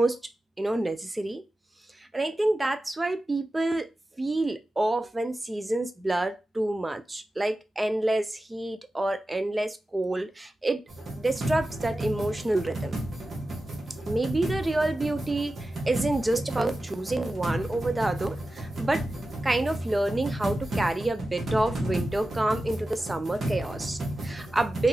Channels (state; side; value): normal; both; correlation 0.94